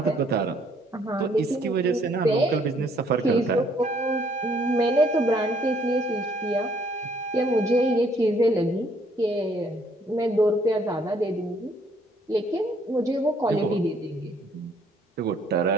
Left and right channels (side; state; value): both; normal; correlation 0.65